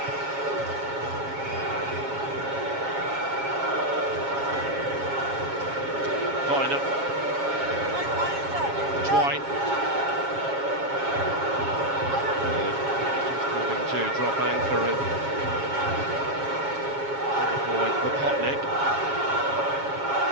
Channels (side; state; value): left; late; 7.3 ms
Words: Viner. Twine. Just moving to drop anchor and avoid Popotnik.